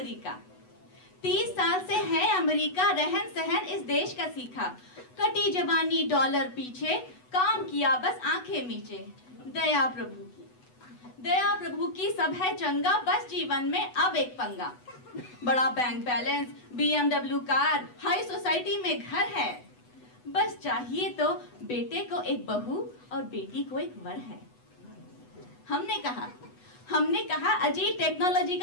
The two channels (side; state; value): right; late; 8.1 ms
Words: 30 साल से है अमेरिका, रहन सहन इस देश का सीखा। कटी जवानी डॉलर पीछे, काम किया बस आंखें मीचे। दया प्रभु की सब है चंगा, बस जीवन में अब एक पंगा। बड़ा bank balance, BMW car, high society में घर है। बस चाहिए तो बेटे को एक बहू और बेटी को एक वर है। हमने कहा अजी टेक्नोलॉजी